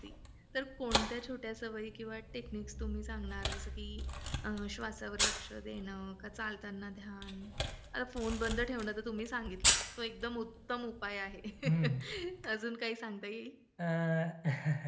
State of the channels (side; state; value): both; identical; correlation 1.00